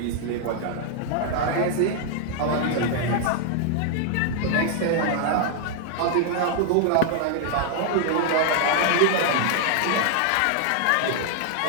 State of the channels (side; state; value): both; different; correlation 0.00